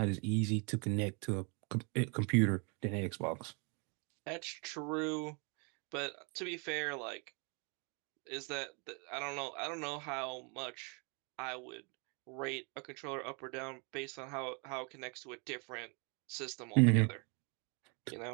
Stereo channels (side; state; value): left; quieter; 34.4 dB